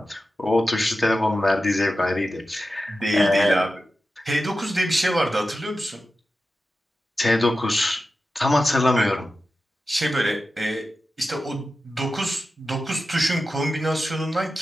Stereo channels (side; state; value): both; normal; correlation 0.93